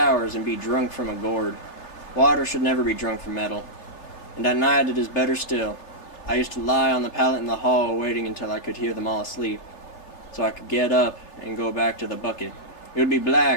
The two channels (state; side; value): late; right; 3.3 ms